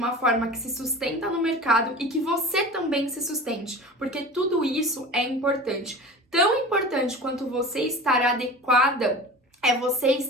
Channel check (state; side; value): normal; both; correlation 0.35